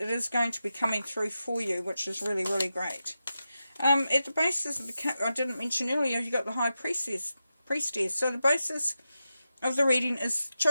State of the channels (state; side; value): inverted; both; correlation -0.90